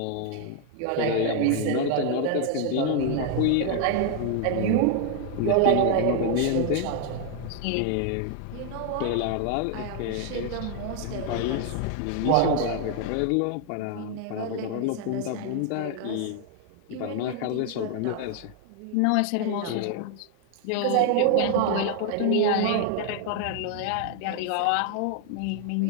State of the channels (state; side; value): different; both; correlation 0.00